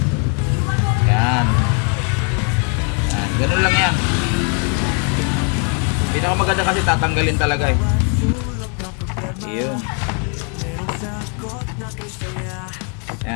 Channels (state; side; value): quieter; right; 39.4 dB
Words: Yan. Yan, ganun lang yan. Pinakamaganda kasi tatanggalin talaga eh. Ayun.